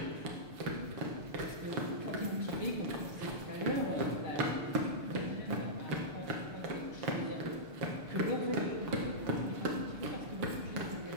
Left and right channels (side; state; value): left; late; 6.8 ms